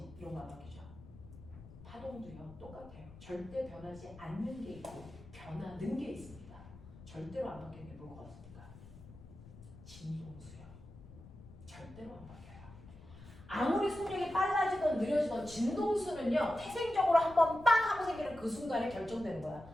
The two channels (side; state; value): left; noise; rumble, 18 dB below the sound